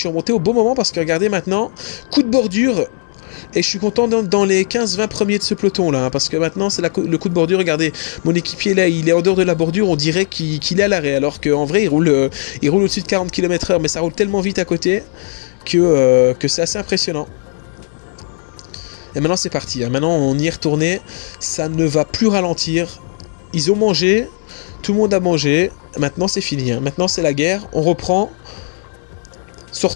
remonté au bon moment parce que regardez maintenant, coup de bordure. Et je suis content dans les 15-20 premiers de ce peloton là, hein, parce que maintenant c'est le coup de bordure. Regardez, mon équipier là, il est en dehors de la bordure, on dirait qu'il est à l'arrêt, alors qu'en vrai il roule au-dessus de 40 km/h, mais ça roule tellement vite à côté que c'est assez impressionnant. Et maintenant c'est parti, hein. Maintenant on y est retourné, ça ne va plus ralentir. Ils ont mangé. Tout le monde a mangé, maintenant c'est fini, hein. Maintenant c'est la guerre, on reprend,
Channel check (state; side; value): silent; right; digital silence